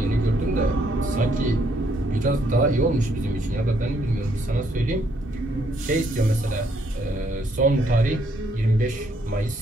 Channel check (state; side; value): normal; both; correlation 0.70